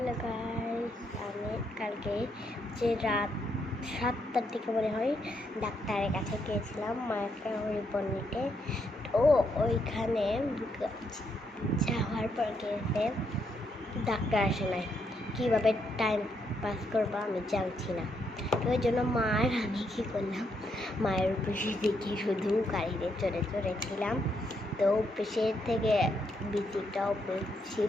guys, আমি কালকে যে রাত 7টার দিকে মনে হয় ডাক্তারের কাছে গিয়েছিলাম মাকে রিপোর্ট নিতে। তো ওইখানে যাওয়ার পর গিয়েছে ডাক্তার আসে নাই। কীভাবে টাইম পাস করবো আমি জানছি না। তো ওই জন্য আমি কী করলাম, মায়ের অফিসে দেখি শুধু গাড়িতে চড়ে চড়েছিলাম। তো অফিসের থেকে বিচিটা অফিস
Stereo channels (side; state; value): both; normal; correlation 0.77